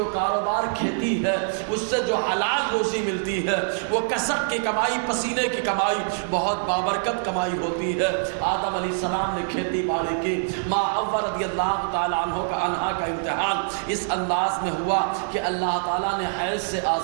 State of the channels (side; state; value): left; silent; digital silence